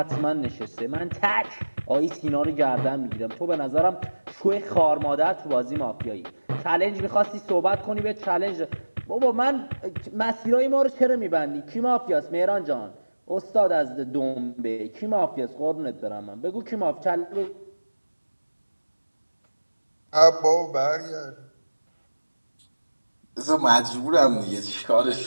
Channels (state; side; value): inverted; both; correlation -1.00